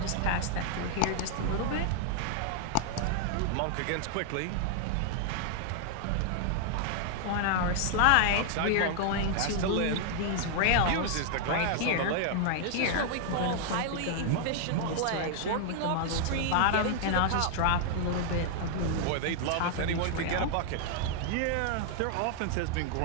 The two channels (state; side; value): different; both; correlation 0.00